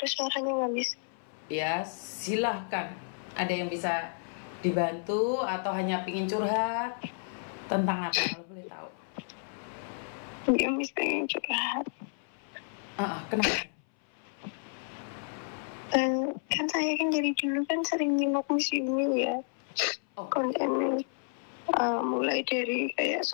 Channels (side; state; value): right; silent; 57 dB below the other